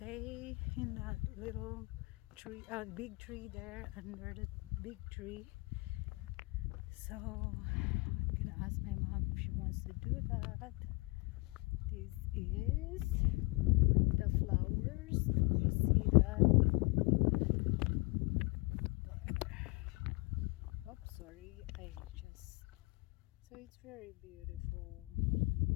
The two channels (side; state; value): right; quieter; 26.9 dB